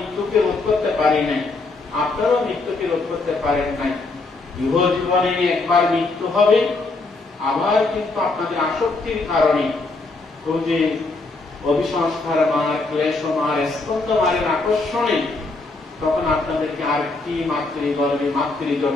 রোধ করতে পারি নাই, আপনারাও মৃত্যুকে রোধ করতে পারেন নাই। ইহ জীবনে একবার মৃত্যু হবে, আবার কিন্তু আপনাদের আসক্তির কারণে ওই যে অভিসংস্কার মার, ক্লেশ মার, স্কন্ধ মারের আকর্ষণে তখন আপনাদেরকে আরেকটি মাতৃগর্ভে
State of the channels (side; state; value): right; quieter; 3.5 dB